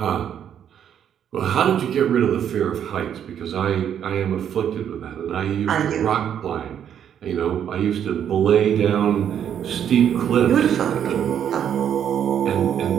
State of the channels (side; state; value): left; quieter; 9.2 dB